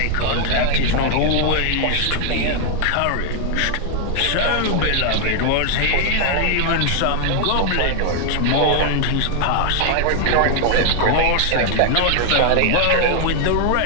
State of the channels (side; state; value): both; different; correlation 0.00